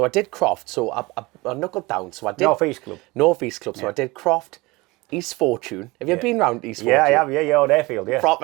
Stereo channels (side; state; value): left; quieter; 23.0 dB